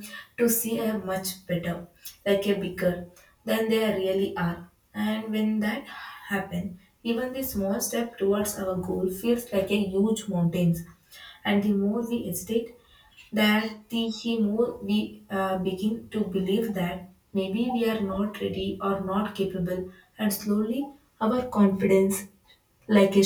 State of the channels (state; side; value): identical; both; correlation 1.00